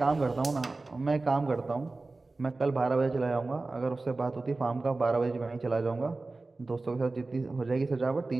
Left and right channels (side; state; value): left; quieter; 3.4 dB